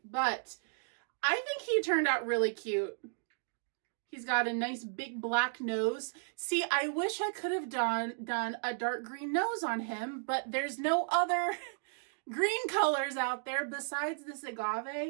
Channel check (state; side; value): silent; left; digital silence